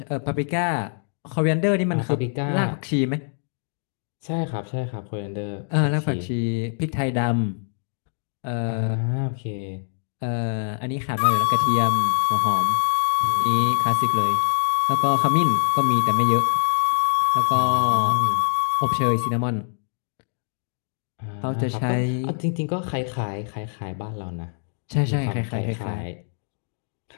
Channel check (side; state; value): right; silent; digital silence